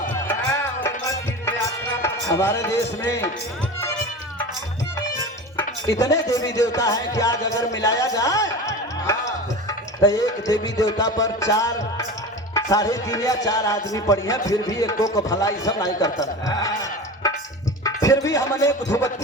हमारे देश में इतने देवी देवता हैं कि आज अगर मिलाया जाए तो एक देवी देवता पर 4, 3.5 या 4 आदमी पड़ी हैं, फिर भी एक को भलाई सब नहीं करता। फिर भी हमने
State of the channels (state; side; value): normal; both; correlation 0.31